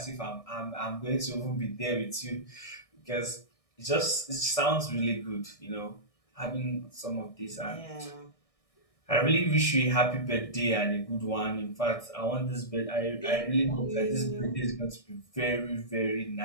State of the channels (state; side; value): late; right; 1.6 ms